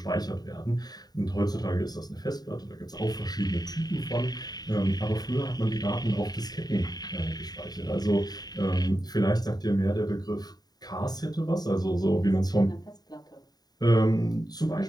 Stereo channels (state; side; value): late; right; 0.19 ms